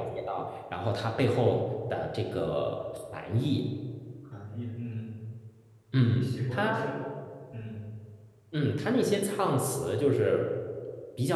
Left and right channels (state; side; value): identical; both; correlation 1.00